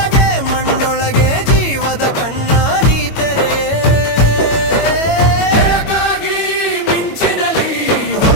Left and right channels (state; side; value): late; right; 22 ms